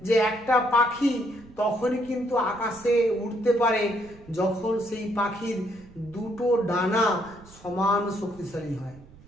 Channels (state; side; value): noise; right; rumble, 23 dB below the sound